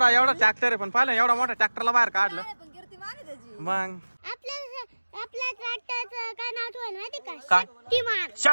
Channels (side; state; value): both; inverted; correlation -1.00